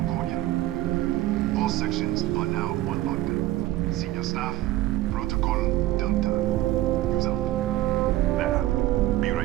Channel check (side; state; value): left; quieter; 15.8 dB